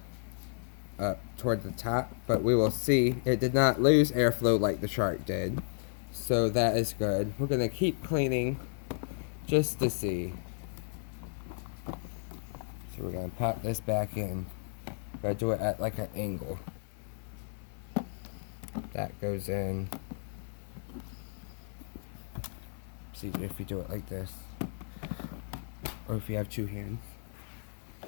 up toward the top. But we will see, it did not lose airflow like the shark did, so that is good. We're gonna keep cleaning just to see. So we're gonna pop this back in. Gotta do it at like an angle. That goes in. See if you do it like this, or if you have two hands.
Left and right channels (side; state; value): right; silent; 56 dB below the other